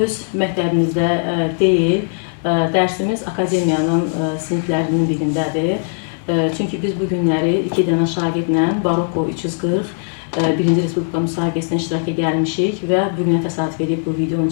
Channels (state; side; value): silent; right; digital silence